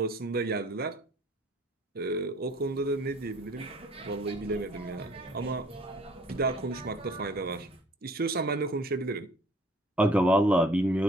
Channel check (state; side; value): normal; both; correlation 0.54